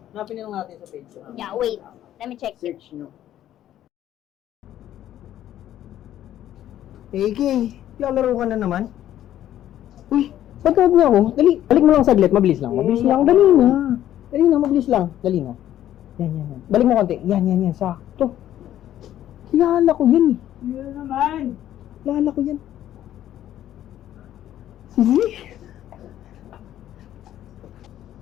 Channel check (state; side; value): quieter; right; 12.1 dB